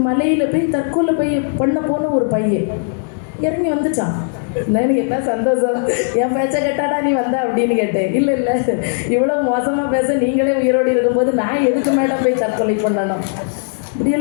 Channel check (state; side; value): silent; right; 68 dB below the other